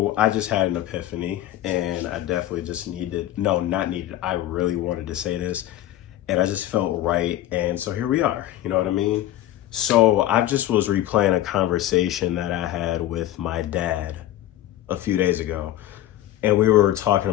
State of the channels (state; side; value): quieter; right; 13.5 dB